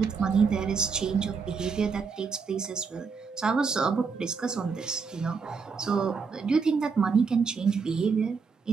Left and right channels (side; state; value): left; quieter; 5.3 dB